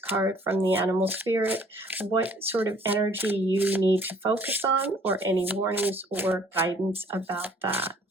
from the animal spirit, what sort of energy you need to focus on, or any warnings or guidance about that.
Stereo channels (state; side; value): normal; both; correlation 0.58